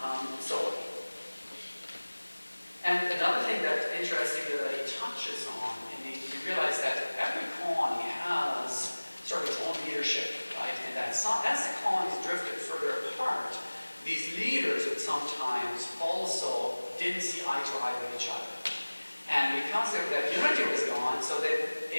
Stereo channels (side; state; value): both; inverted; correlation -1.00